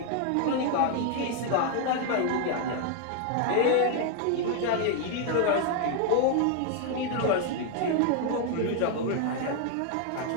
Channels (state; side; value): different; both; correlation 0.00